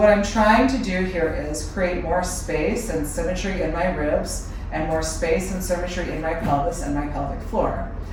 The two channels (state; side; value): identical; both; correlation 1.00